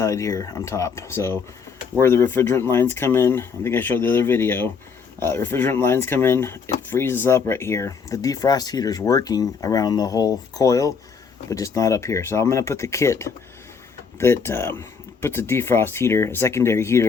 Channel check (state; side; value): quieter; right; 5.8 dB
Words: here on top. So where the refrigerant lines come in, I think I showed the other video, refrigerant lines come in, it freezes up right here. The defrost heater is working around the whole coil, but just not up here. So I'm going to put the kit that puts a defrost heater, a secondary